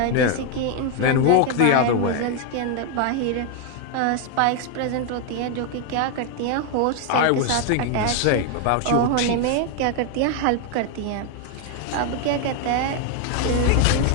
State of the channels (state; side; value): different; both; correlation 0.01